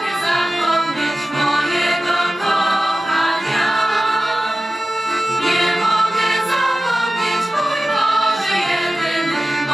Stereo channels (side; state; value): both; normal; correlation 0.95